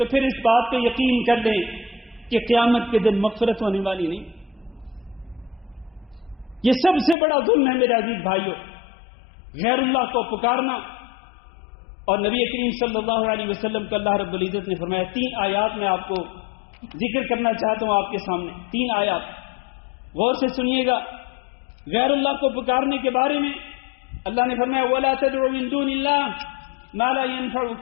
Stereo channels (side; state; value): right; drops out; at 7.2 s